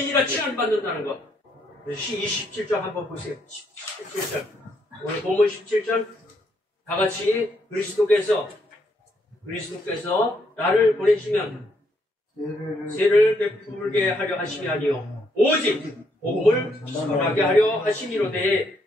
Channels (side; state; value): both; normal; correlation 0.74